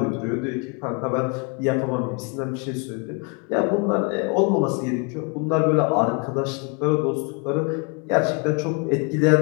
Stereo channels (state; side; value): quieter; right; 33.5 dB